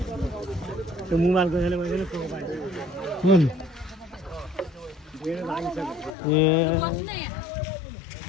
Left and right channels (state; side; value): drops out; right; at 6.2 s